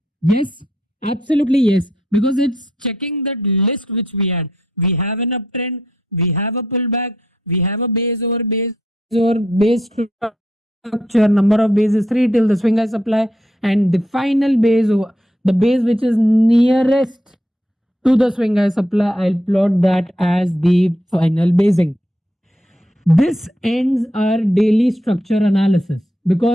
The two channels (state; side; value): normal; both; correlation 0.77